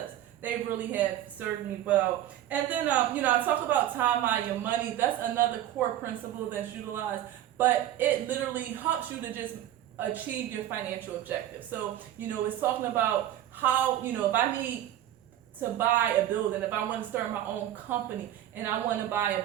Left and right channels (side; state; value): left; quieter; 12.4 dB